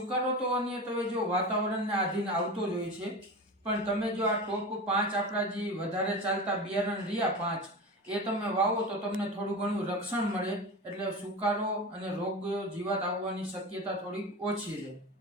તો અન્ય તમે જો વાતાવરણને આધીન આવતો જ હોય છે, પણ તમે જો આ ટોપ 5 આપણા જે વધારે ચાલતા બિયારણ રહ્યા 5 એ તમે વાવો તો તમને થોડું ઘણું રક્ષણ મળે, એટલે સુકારો અને રોગ જીવાત આવવાની શક્યતા થોડી ઓછી રહે.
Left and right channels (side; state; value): both; normal; correlation 0.28